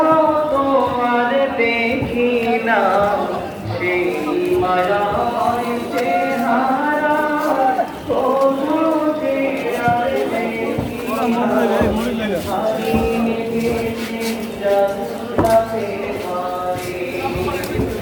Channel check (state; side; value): identical; both; correlation 1.00